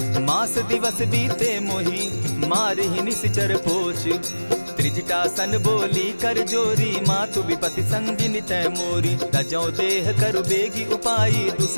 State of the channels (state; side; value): inverted; both; correlation -1.00